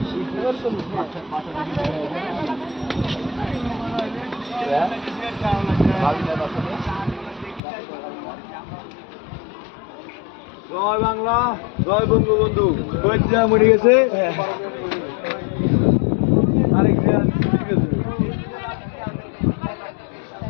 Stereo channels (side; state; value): right; drops out; at 7.6 s